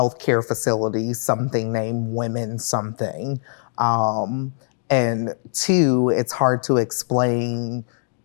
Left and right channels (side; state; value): right; silent; digital silence